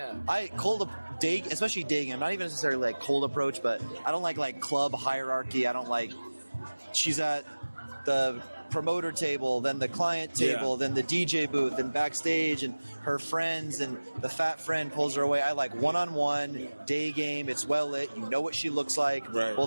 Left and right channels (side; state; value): both; inverted; correlation -1.00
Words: dating. I'm not even necessarily like cold approach, but I don't like club hierarchy. I don't like. She's at the promoter table, then the client table, then the DJ booth, and backstage, and her friends, and the fat friend pulls her away. I like one-on-one, day game. It's well lit. You know what she looks like. Right.